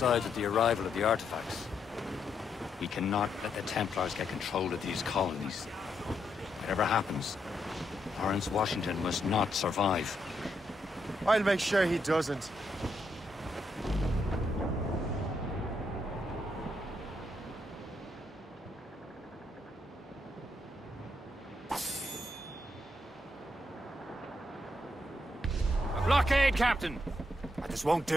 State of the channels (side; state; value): both; normal; correlation 0.79